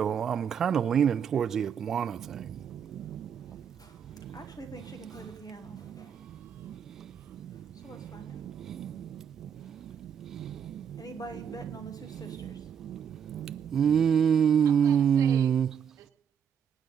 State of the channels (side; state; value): left; quieter; 7.8 dB